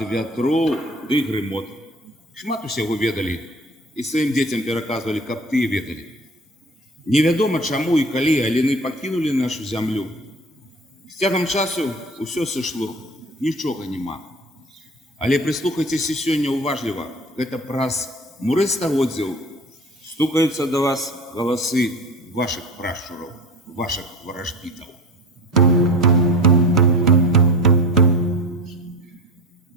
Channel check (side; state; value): both; normal; correlation 0.36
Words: вятроў ды грымот. Шмат усяго ведалі і сваім дзецям пераказвалі, каб тыя ведалі. Невядома чаму і калі аліны пакінулі нашу зямлю. З цягам часу ўсё сышло, нічога няма. Але прыслухайцеся сёння уважліва, гэта праз муры стагоддзяў стукаюцца да вас галасы вашых прашчураў, вашых варажбітаў.